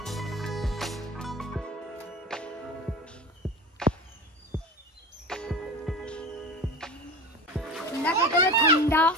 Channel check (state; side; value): normal; both; correlation 0.31